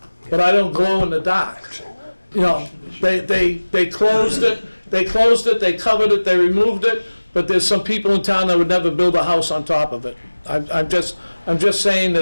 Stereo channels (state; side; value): inverted; both; correlation -1.00